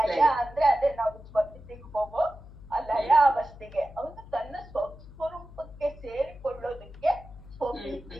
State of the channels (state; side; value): noise; left; hum, 18 dB below the sound